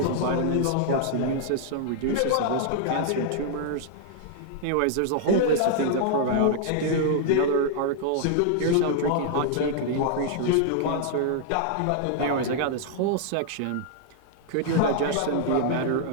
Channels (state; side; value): different; both; correlation -0.01